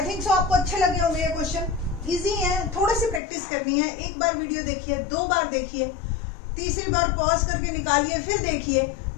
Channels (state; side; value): drops out; right; at 3.2 s